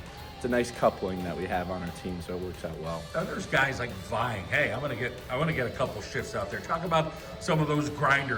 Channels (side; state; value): both; identical; correlation 1.00